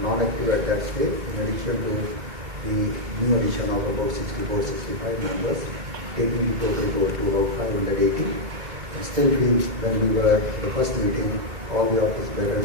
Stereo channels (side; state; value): both; normal; correlation -0.02